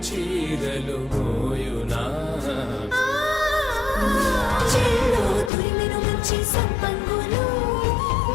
చీరలు మోయునా చెల్లో తురిమెను మంచి సంపంగులు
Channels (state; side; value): drops out; right; at 5.5 s